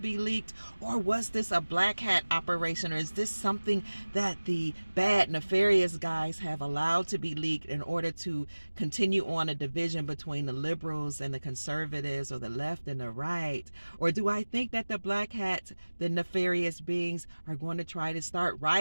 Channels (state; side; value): inverted; both; correlation -1.00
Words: leaked, or was this a black hat operation, or is this something that the bad, nefarious guys have allowed to be leaked in order to continue on a division between the liberals and the conservatives, or the left and the right? Or do I think that the black hats, the nefarious beings, are going to try to start